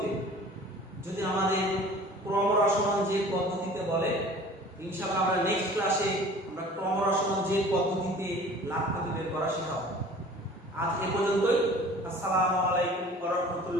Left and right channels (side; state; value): both; normal; correlation 0.45